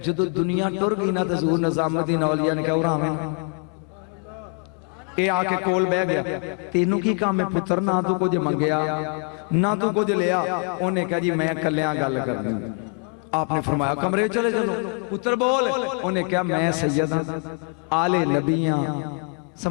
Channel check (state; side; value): quieter; right; 36.7 dB